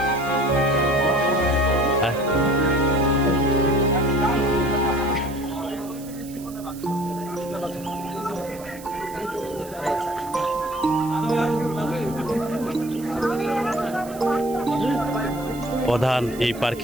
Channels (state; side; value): noise; right; hiss, 18 dB below the sound